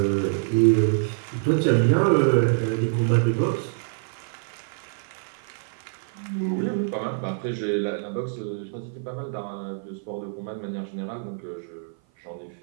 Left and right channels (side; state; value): left; silent; 55 dB below the other